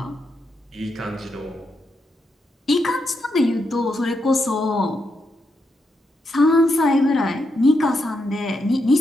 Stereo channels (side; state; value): both; normal; correlation 0.82